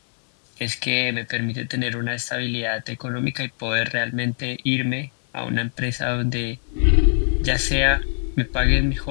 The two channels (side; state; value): right; silent; 62 dB below the other